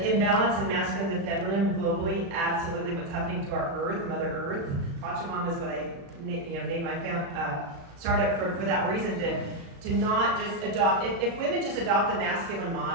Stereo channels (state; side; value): late; left; 36 ms